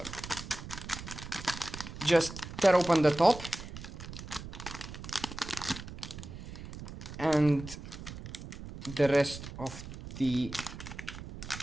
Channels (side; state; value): right; noise; rumble, 11 dB below the sound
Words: Just tear open the top and the rest of the